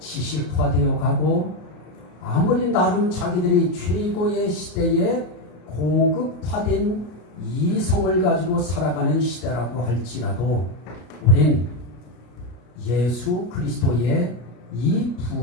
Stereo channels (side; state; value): right; late; 33 ms